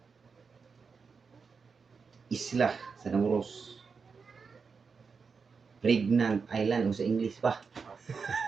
Isla sa Namuros. Pregnant Island o sa English pa.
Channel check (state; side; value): quieter; left; 5.3 dB